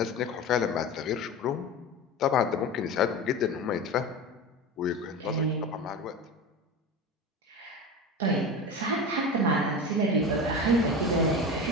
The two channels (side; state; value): both; normal; correlation 0.27